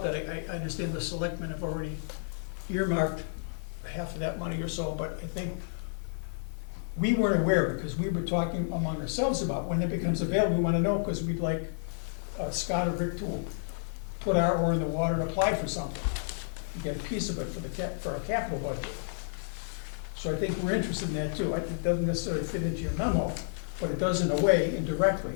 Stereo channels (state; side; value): silent; right; 57 dB below the other